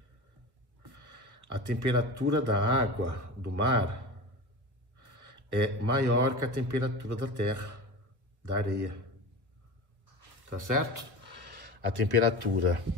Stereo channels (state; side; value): late; left; 1.2 ms